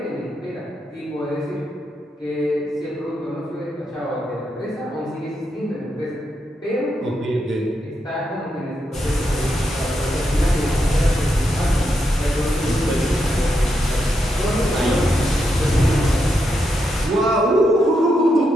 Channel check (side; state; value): both; normal; correlation 0.83